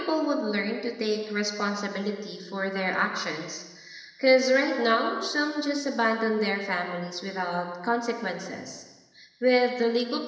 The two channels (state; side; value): identical; both; correlation 1.00